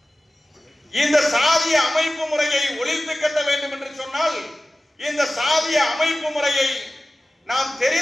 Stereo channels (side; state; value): both; normal; correlation 0.96